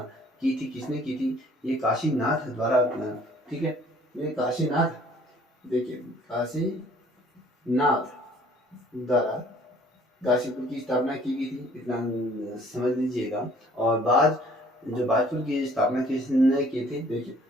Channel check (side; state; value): both; normal; correlation 0.56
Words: की थी, किसने की थी? ये काशीनाथ द्वारा, ठीक है, ये काशीनाथ, देखिए काशीनाथ द्वारा काशीपुर की स्थापना की गई थी, इतना समझ लीजिएगा। और बाद जो बाजपुर की स्थापना किसने की थी? देखिए